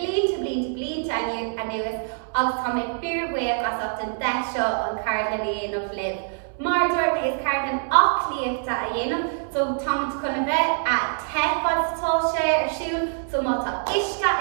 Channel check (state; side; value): silent; left; 62 dB below the other